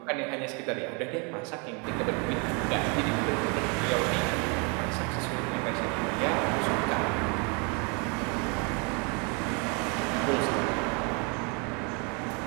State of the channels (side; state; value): left; quieter; 33.5 dB